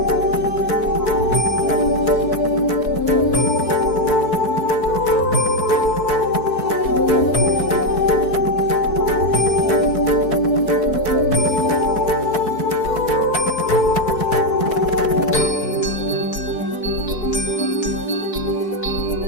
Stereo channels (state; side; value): late; right; 4.6 ms